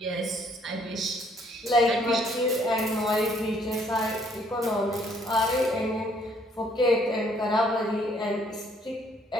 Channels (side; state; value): both; normal; correlation 0.65